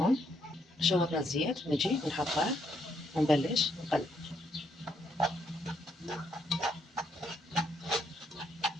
شوطنا الزيت نجي نحطه ونبلش نقلب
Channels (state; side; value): normal; both; correlation 0.74